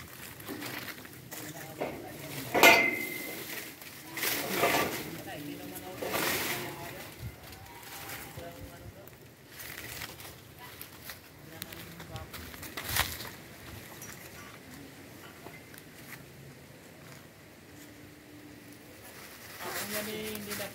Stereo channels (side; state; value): both; identical; correlation 1.00